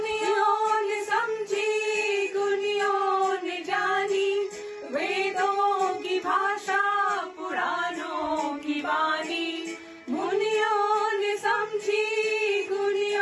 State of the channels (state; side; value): identical; both; correlation 1.00